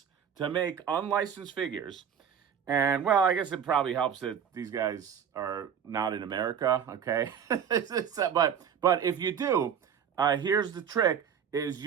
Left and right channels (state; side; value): quieter; left; 8.0 dB